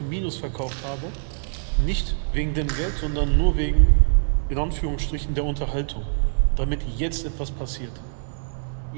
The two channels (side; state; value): left; silent; 62 dB below the other